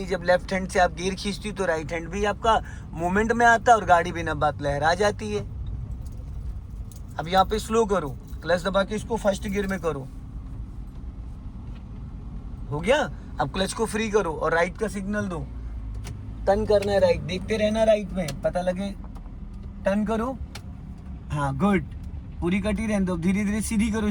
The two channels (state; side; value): identical; both; correlation 1.00